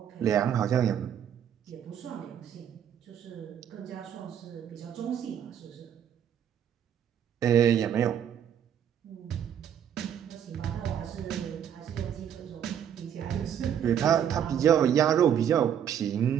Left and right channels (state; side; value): quieter; left; 9.1 dB